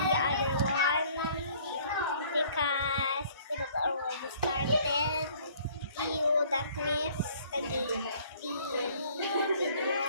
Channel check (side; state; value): both; inverted; correlation -0.57